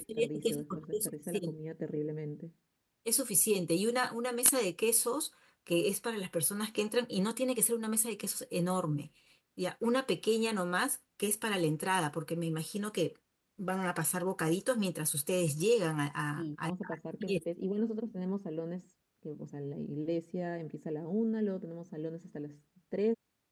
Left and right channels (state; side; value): identical; both; correlation 1.00